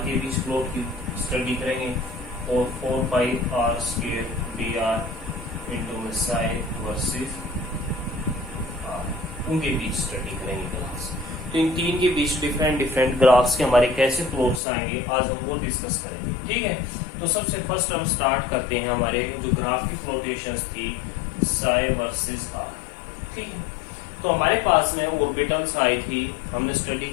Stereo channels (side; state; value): right; drops out; at 14.6 s